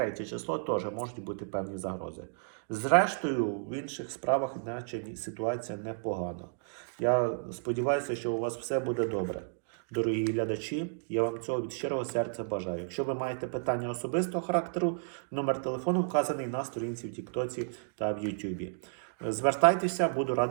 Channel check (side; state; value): left; silent; digital silence